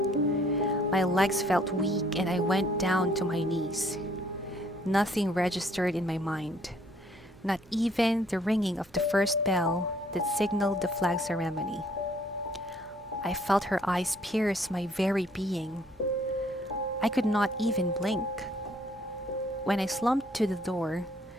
My legs felt weak and I went down to my knees. Nothing registered in my mind, not even the ringing of the first bell that signaled the flag ceremony. I felt her eyes pierce my very being. I could not even blink. When I slumped to the door,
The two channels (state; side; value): noise; right; hum, 27 dB below the sound